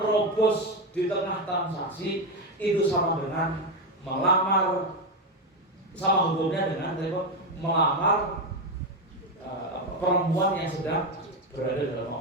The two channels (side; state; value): both; normal; correlation 0.10